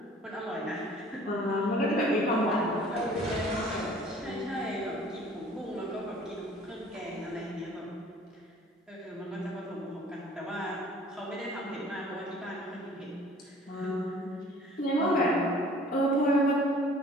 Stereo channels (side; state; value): both; normal; correlation 0.51